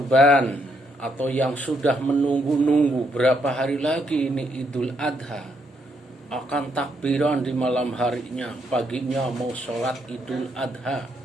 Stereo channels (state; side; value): normal; both; correlation 0.75